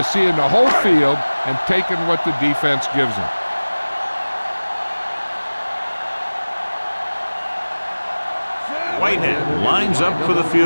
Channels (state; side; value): inverted; both; correlation -1.00